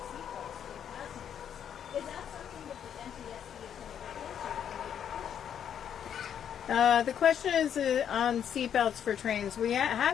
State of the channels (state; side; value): quieter; right; 8.9 dB